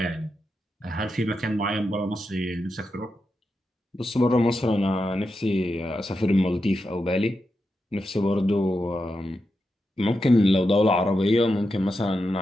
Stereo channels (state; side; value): normal; both; correlation 0.88